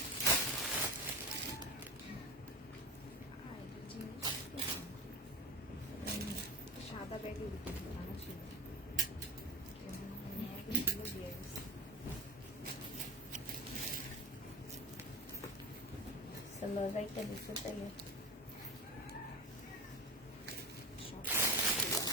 সাদা ব্যাগে বানা ছিল দিয়ে গেছে। সালোয়ারটা দিতে চাইলে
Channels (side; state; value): both; normal; correlation 0.24